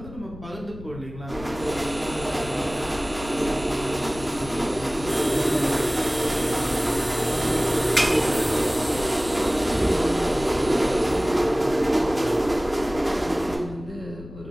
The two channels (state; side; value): noise; left; rumble, 15 dB below the sound